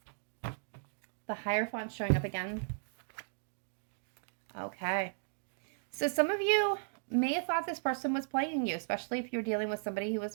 The Hierophant showing up again. Okay. So some of you may have thought this person was playing you, especially if you're dealing with somebody who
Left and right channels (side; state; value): left; silent; digital silence